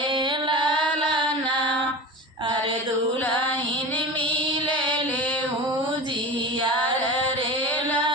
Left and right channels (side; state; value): both; normal; correlation 0.31